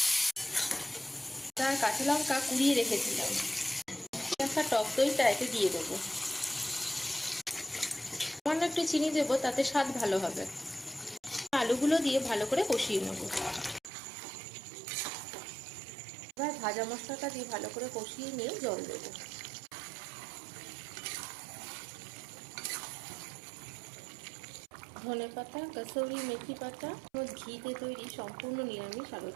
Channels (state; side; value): drops out; left; at 13.9 s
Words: তার কাঁচা লঙ্কা কুড়িয়ে রেখেছিলাম। একটা টক দইটা এতে দিয়ে দেবো। সামান্য একটু চিনি দেবো, তাতে স্বাদ ভালো হবে। আলুগুলো দিয়ে ভালো করে কষিয়ে নেব। এবার ভাজা মশলাটা দিয়ে ভালো করে কষিয়ে নিয়ে জল দেবো। ধনেপাতা, কাসুরি মেথি পাতা, ঘিতে তৈরি সম্পূর্ণ নিরামিষ আলুর